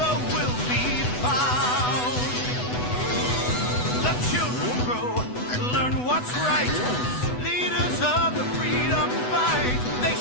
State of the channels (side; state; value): right; late; 8.1 ms